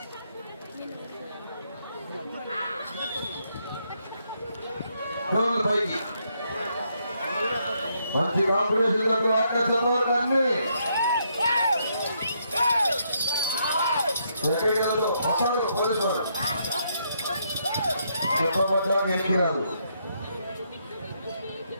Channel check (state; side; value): inverted; both; correlation -0.75